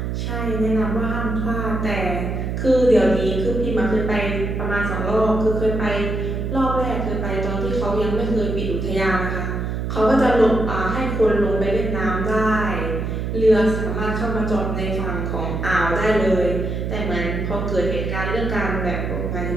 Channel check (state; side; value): noise; right; hum, 2 dB below the sound